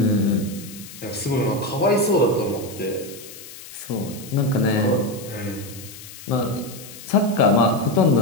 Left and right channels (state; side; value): noise; left; hiss, 16 dB below the sound